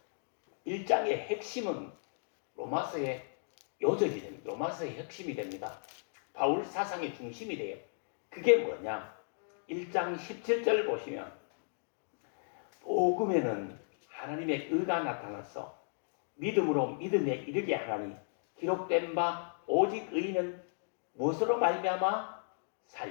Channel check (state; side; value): silent; right; digital silence